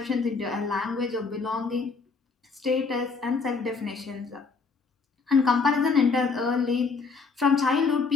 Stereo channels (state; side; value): quieter; right; 4.6 dB